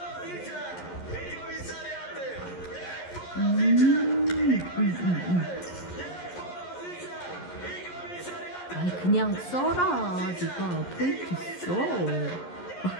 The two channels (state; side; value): late; right; 11 ms